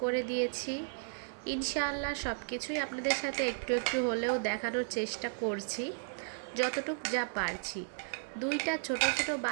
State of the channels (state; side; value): silent; left; 55 dB below the other